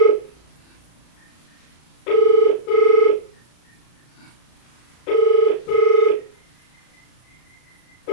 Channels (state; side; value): late; right; 34 ms